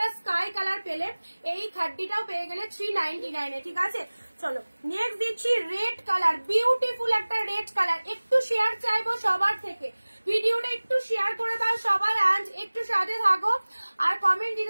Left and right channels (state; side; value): inverted; both; correlation -1.00